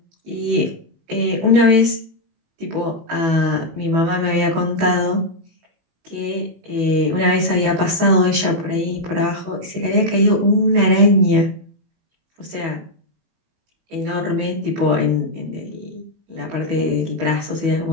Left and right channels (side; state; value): left; late; 18 ms